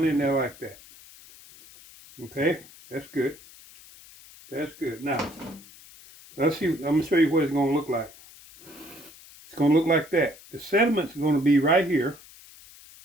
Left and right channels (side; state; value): left; noise; hiss, 21 dB below the sound